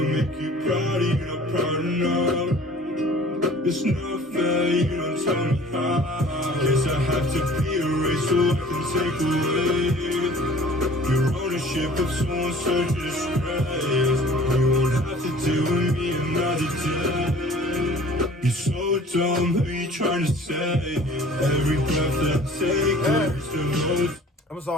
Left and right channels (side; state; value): both; normal; correlation 0.48